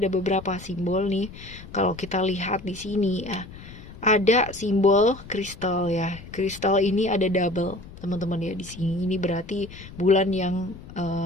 beberapa simbol nih. Kalau kita lihat di sini ya, ada simbol kristal ya. Kristal ini ada double teman-teman ya di sini. Ini berarti bulan yang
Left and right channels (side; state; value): left; noise; rumble, 16 dB below the sound